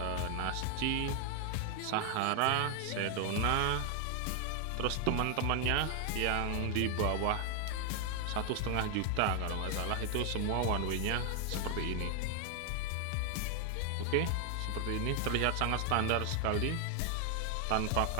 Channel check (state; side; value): different; both; correlation 0.00